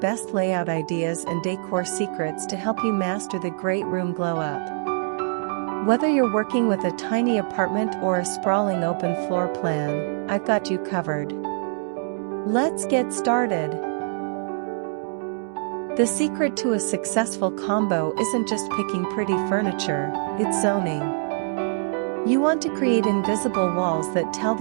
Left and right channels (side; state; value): left; silent; digital silence